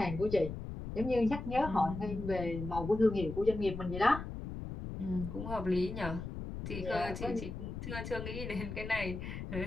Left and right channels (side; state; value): left; noise; rumble, 7 dB below the sound